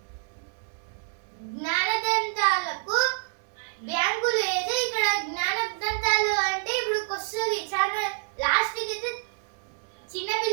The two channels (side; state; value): left; silent; 60 dB below the other